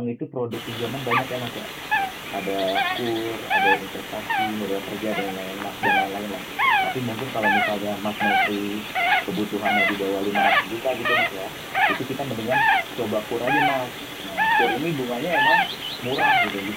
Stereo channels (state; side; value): identical; both; correlation 1.00